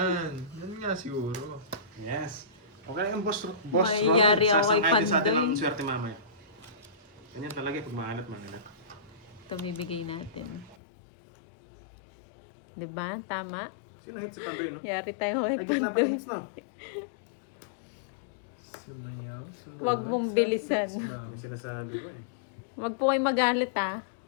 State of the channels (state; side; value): drops out; right; at 10.8 s